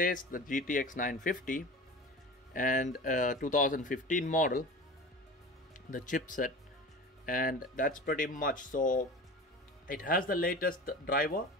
the GTX 950 and 2015 model, the chipset, and that's pretty much. So it has the latest driver.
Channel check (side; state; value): both; normal; correlation 0.35